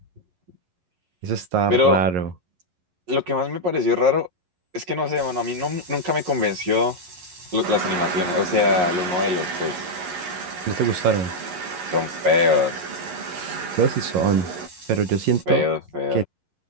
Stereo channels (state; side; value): late; left; 11 ms